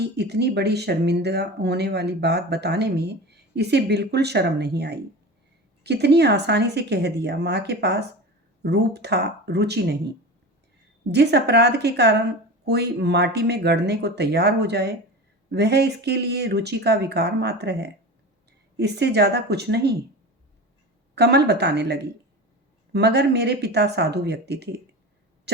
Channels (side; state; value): both; normal; correlation 0.30